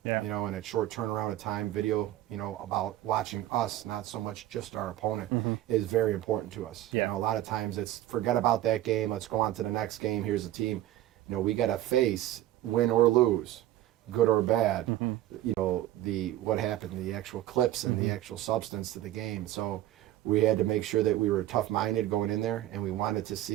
and at short turnaround of time, video, about watching us, not so much just our opponent, is very important to us. A lot of times it's forget about that game, let's go on to the next game, here's the team. We got to face, win or lose, good or bad, what happened, the actual clips and the actual substance to the game. So we had to make sure that we were tough-minded going in there, and we wanted to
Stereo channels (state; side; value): quieter; left; 14.0 dB